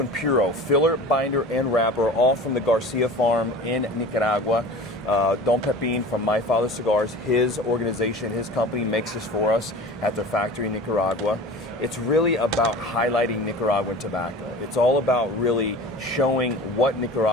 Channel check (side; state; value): both; normal; correlation 0.38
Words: Puro, filler, binder, and wrapper, all from the Garcia farm in Nicaragua. Don Pepin from My Father Cigars, his organization, his company makes this for us at their factory in Nicaragua. It's really about highlighting Nicaraguan tobacco. It's all about really showing what